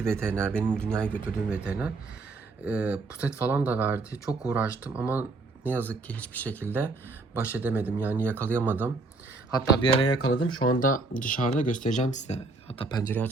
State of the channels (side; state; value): left; quieter; 3.5 dB